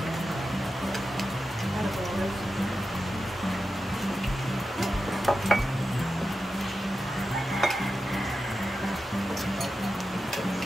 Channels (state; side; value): normal; both; correlation 0.91